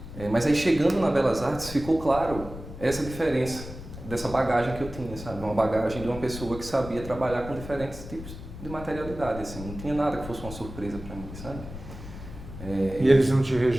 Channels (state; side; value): noise; left; rumble, 12 dB below the sound